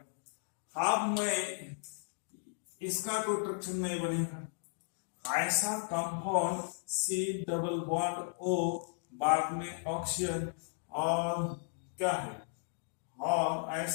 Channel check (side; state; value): right; silent; digital silence